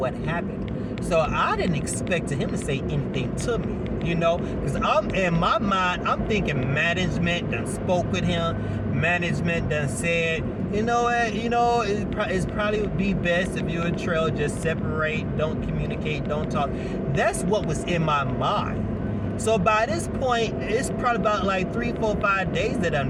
happened. So I didn't expect him to say anything to me, because I'm in my mind, I'm thinking management done spoke with him. Management done said, it's probably would be best if you and Trell just separate, don't communicate, don't talk. That's what was in my mind. So by this point, it's probably about like 3, 4, 5 days that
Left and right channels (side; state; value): both; identical; correlation 1.00